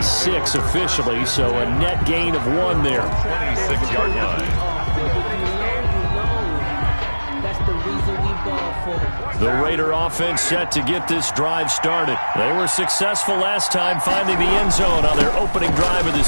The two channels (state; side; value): inverted; both; correlation -1.00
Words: officially, so a net gain of 1 there. 26-yard line. The Raider offense set to get this drive started. They were successful last time finding the end zone on their opening drive of the